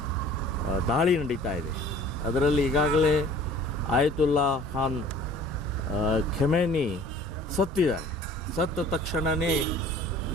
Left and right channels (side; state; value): both; normal; correlation 0.49